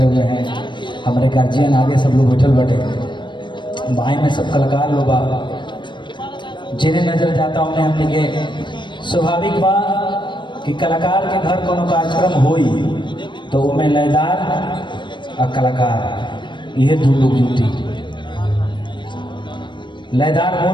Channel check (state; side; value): late; right; 0.22 ms